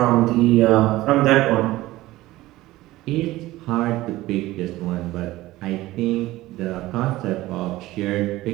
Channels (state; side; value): quieter; left; 17.3 dB